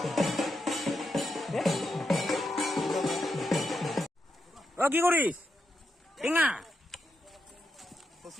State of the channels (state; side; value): normal; both; correlation 0.84